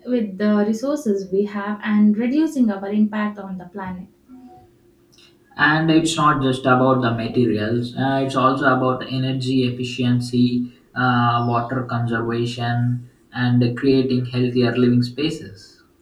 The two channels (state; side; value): identical; both; correlation 1.00